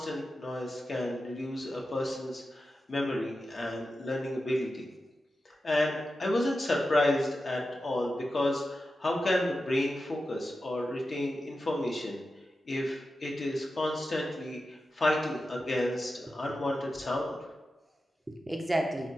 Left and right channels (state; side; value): normal; both; correlation 0.92